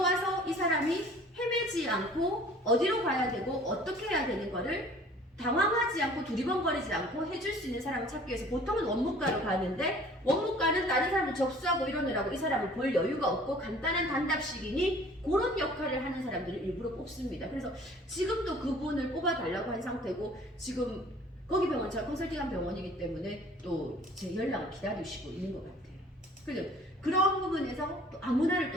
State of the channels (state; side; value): normal; both; correlation 0.50